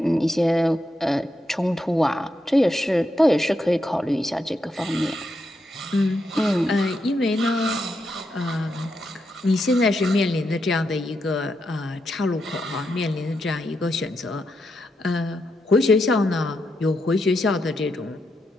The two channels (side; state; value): both; normal; correlation 0.83